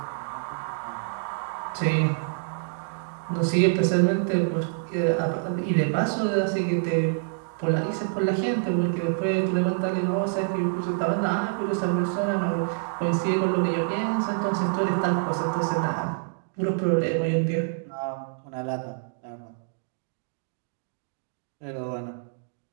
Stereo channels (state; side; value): silent; left; digital silence